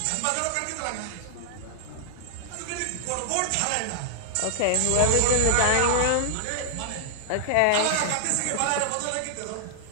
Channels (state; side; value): different; both; correlation -0.01